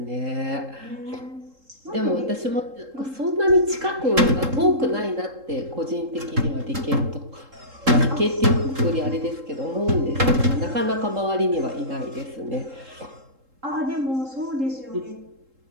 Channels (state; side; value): late; left; 3.7 ms